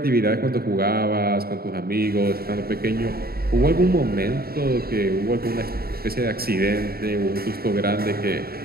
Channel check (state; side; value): late; left; 0.45 ms